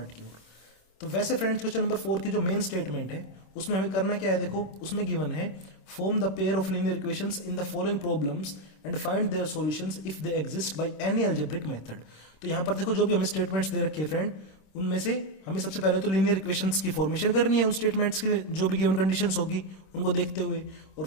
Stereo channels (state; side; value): late; right; 26 ms